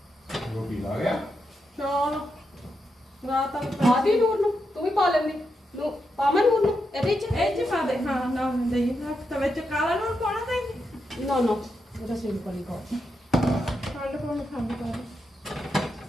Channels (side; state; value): both; normal; correlation 0.85